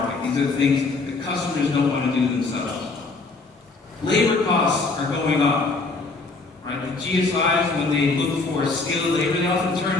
These are the things that customers don't want to do themselves. Labor costs are going up. Right? The GSIs, when they look for skilled labor, they often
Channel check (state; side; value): quieter; right; 3.7 dB